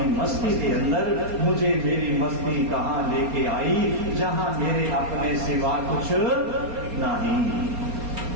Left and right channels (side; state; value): left; late; 4.3 ms